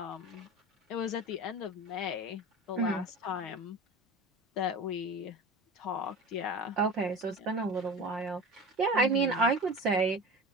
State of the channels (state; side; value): normal; both; correlation 0.32